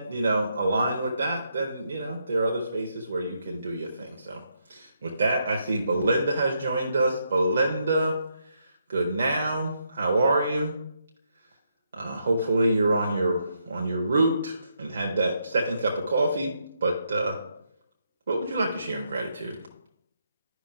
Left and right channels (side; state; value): both; inverted; correlation -0.78